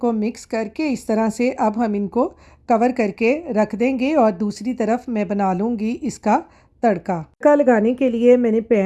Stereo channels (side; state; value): both; identical; correlation 1.00